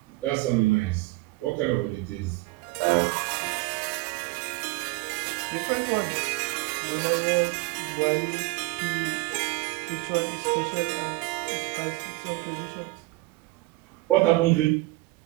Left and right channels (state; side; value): quieter; left; 22.3 dB